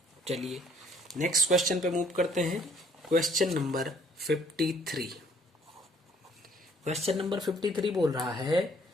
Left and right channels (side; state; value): both; normal; correlation 0.61